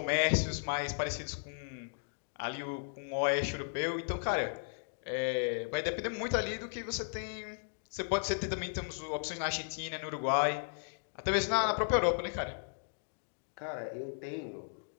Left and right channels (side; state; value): right; silent; digital silence